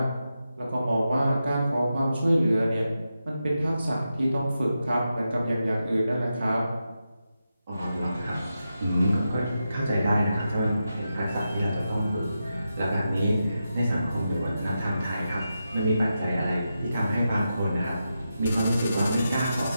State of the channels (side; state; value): both; inverted; correlation -0.89